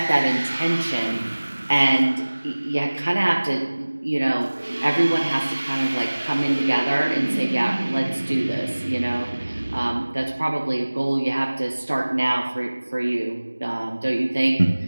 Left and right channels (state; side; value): inverted; both; correlation -1.00